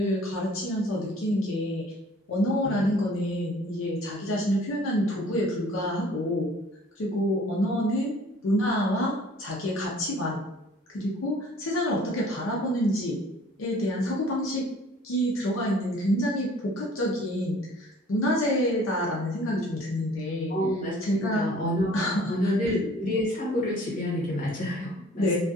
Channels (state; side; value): normal; both; correlation 0.52